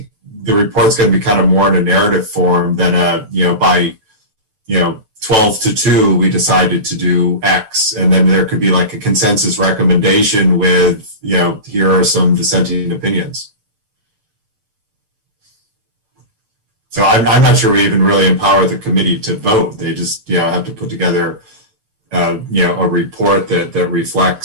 the report's going to be kind of more in a narrative form than by 12-2 we decided to do X, and then there could be like a consensus recommendation with here are some dissenting opinions. So I'm not sure we even really empower the committee to vote. They just have to put together a report that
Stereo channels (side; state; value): left; late; 9.3 ms